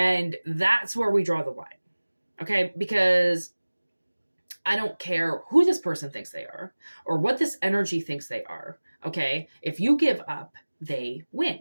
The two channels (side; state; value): both; inverted; correlation -1.00